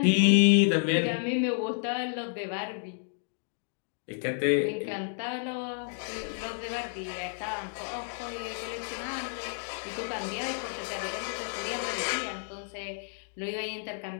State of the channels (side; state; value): right; silent; digital silence